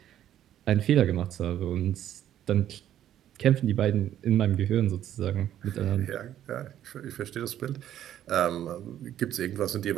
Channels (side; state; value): left; quieter; 11.4 dB